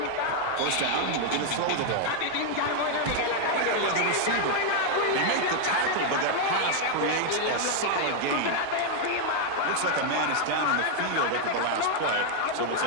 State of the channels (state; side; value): different; both; correlation 0.00